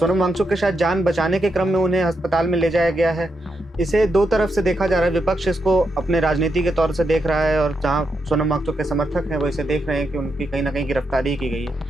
वांगचुक के शायद जान बचाने के क्रम में उन्हें अस्पताल में ले जाया गया है। इसे दो तरफ से देखा जा रहा है। विपक्ष इसको अपने राजनीति के तौर से देख रहा है और जहां सोनम वांगचुक के समर्थक हैं वो इसे देख रहे हैं कि उनकी कहीं ना कहीं गिरफ्तारी की गई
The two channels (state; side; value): normal; both; correlation 0.83